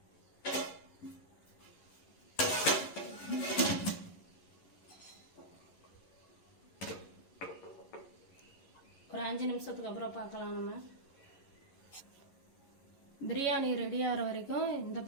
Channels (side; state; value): right; late; 11 ms